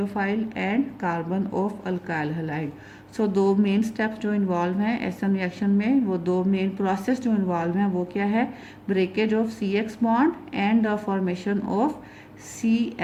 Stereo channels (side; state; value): both; identical; correlation 1.00